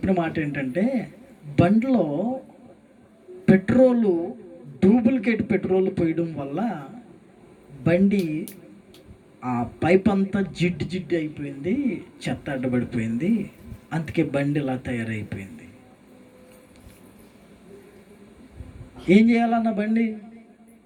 మాట ఏంటంటే, బండిలో డూప్లికేట్ పెట్రోల్ పోయడం వల్ల బండి ఆ పైప్ అంతా జిడ్డు అయిపోయింది, చెత్త అడ్డబడిపోయింది, అందుకే బండి ఇలా తయారైపోయింది. ఏం చేయాలన్న బండి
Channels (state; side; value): identical; both; correlation 1.00